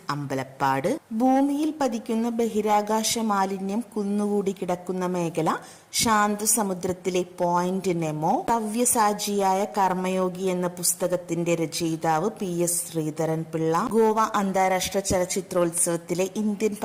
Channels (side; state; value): both; identical; correlation 1.00